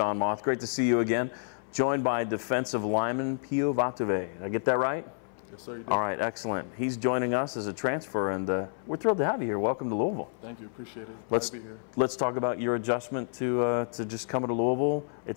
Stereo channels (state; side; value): silent; right; 58 dB below the other